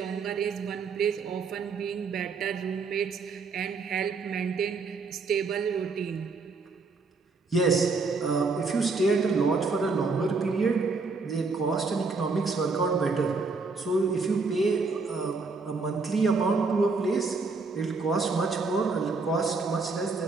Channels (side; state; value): left; quieter; 4.2 dB